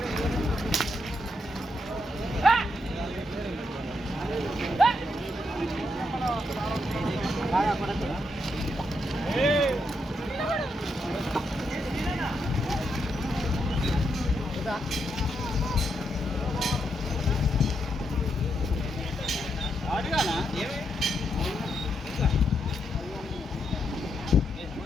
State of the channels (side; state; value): both; normal; correlation 0.80